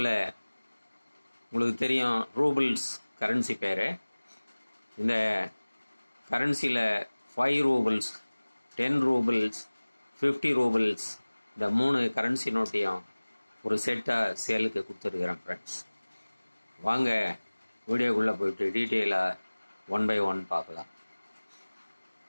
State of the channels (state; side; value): inverted; both; correlation -1.00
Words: உங்களுக்கு தெரியும் ரூபிள்ஸ் கரன்சி பேர். இந்த கரன்சியில் 5 ரூபிள்ஸ், 10 ரூபிள்ஸ், 50 ரூபிள்ஸ் இந்த 3 கரன்சி நோட்டையும் ஒரு செட்டாக சேலுக்கு கொடுத்துருக்குறேன் ஃப்ரெண்ட்ஸ். வாங்க வீடியோக்குள்ளே போயிட்டு டீட்டெயிலாக 1 by 1 பார்க்கலாம்.